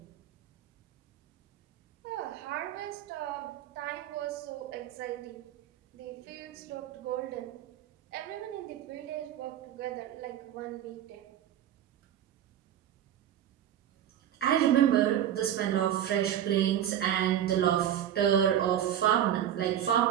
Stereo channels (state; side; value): quieter; left; 10.6 dB